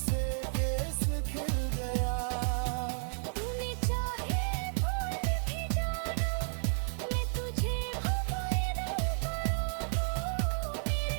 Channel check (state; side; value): silent; left; digital silence